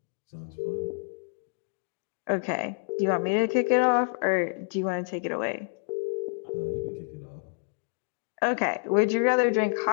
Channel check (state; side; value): silent; right; digital silence